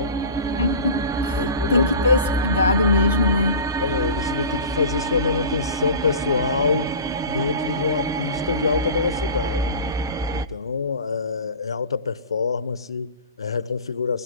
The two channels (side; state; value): both; inverted; correlation -0.35